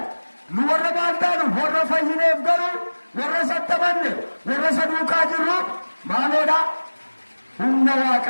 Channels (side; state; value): both; inverted; correlation -1.00